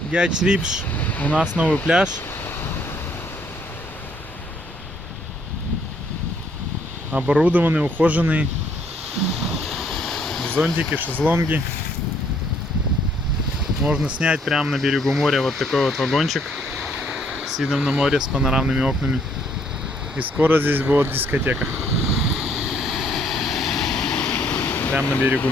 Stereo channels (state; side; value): normal; both; correlation 0.66